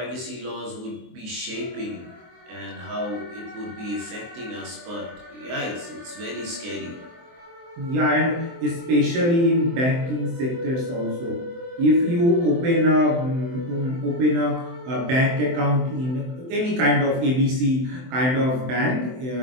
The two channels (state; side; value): late; left; 23 ms